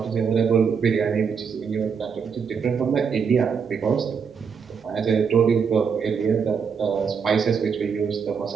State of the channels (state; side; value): quieter; left; 6.3 dB